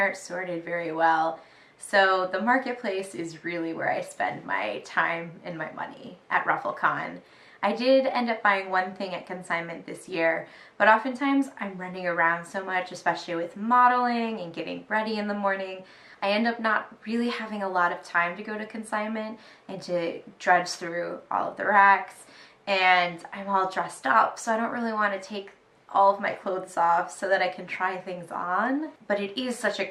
sorted very well. So the marketplace is really where I spend my time and my money at RuffleCon. I did end up buying one thing at consignment this year, but oftentimes I'm running around so much, especially with modeling and getting ready in the morning. I end up not really having a lot of time to go to consignment and to drudge through all of the racks, and I'm all dressed up, so I don't really want to take all of my clothes off so that I can try things on. But it is such a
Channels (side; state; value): both; identical; correlation 1.00